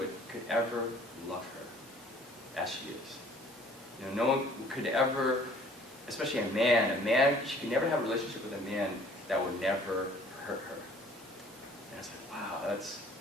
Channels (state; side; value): normal; both; correlation 0.54